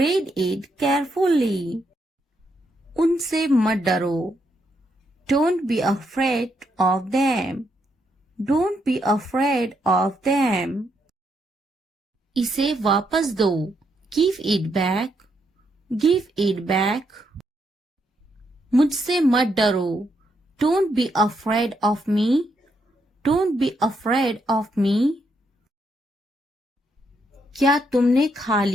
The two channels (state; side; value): normal; both; correlation 0.78